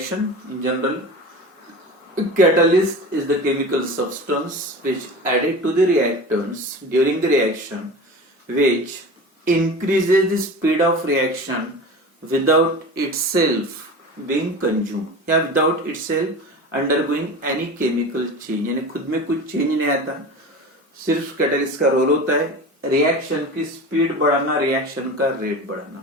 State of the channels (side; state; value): both; normal; correlation 0.33